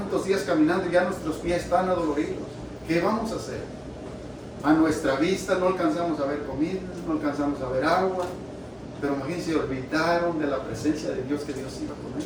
días caminando y ya nuestros pies están adoloridos. ¿Qué vamos a hacer? A nuestra vista no alcanzamos a ver comida, no alcanzamos a ver agua, pero imagínense, olvidaron de la presencia de Dios, que Dios iba con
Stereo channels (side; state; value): both; identical; correlation 1.00